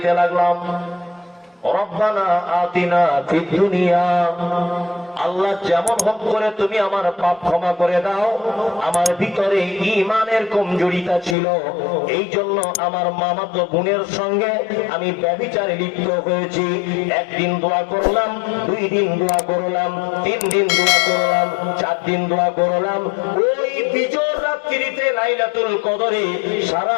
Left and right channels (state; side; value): drops out; right; at 11.4 s